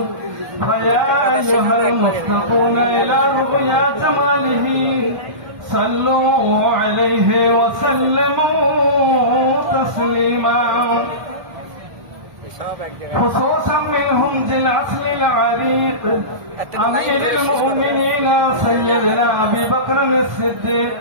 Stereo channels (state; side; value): late; left; 1.3 ms